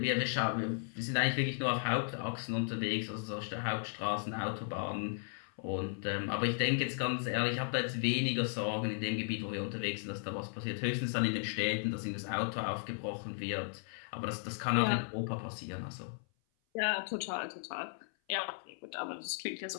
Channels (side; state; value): right; silent; 54 dB below the other